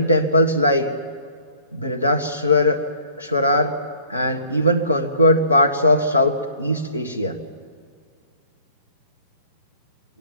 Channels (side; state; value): both; inverted; correlation -0.55